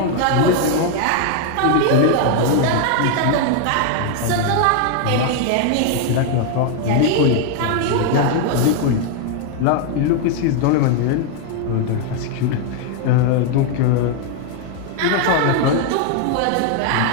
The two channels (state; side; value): different; both; correlation 0.00